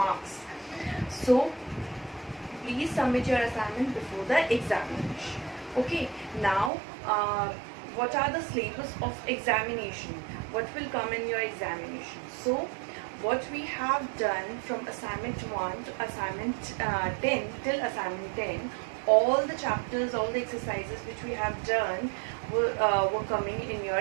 So please submit your assignment before the examination. Okay, now what are the syllabus of examination? What will come in your examination? So what we have done from assignment 1 to assignment 10 till assignment 10, all the chapters, all the exercises which we have done were coming in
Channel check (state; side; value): drops out; left; at 6.7 s